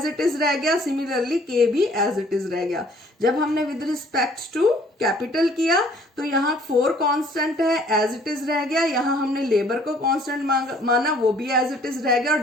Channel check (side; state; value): both; normal; correlation 0.58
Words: इट इज रह गया, सिमिलरली K भी एज इट इज रह गया. जब हमने विद रिस्पेक्ट टू कैपिटल किया तो यहाँ 4 कांस्टेंट है, एज इट इज रह गया. यहाँ हमने लेबर को कांस्टेंट माना, वो भी एज इट इज रह गया और